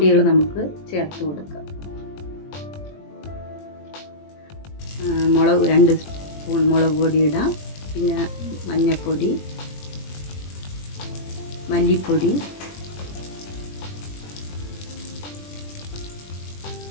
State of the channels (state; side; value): late; right; 21 ms